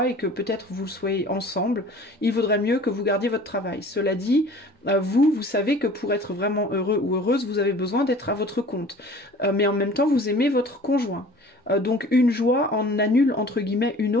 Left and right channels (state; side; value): normal; both; correlation 0.46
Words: et que peut-être vous soyez ensemble, il vaudrait mieux que vous gardiez votre travail. Cela dit, vous savez que pour être vraiment heureux ou heureuse, vous avez besoin d'être à votre compte. Mais en même temps, vous aimez votre conjoint. Donc une joie en annule entre guillemets une